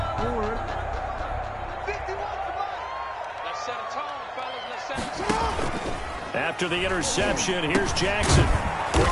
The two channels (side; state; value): both; identical; correlation 1.00